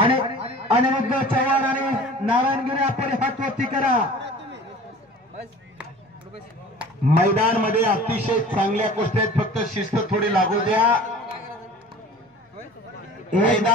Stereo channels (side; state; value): both; normal; correlation 0.43